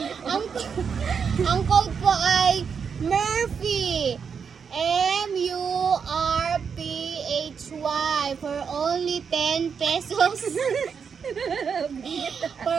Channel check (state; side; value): quieter; left; 6.4 dB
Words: ang code po ay Murphy. M-U-R-P-H-Y for only 10 pesos. For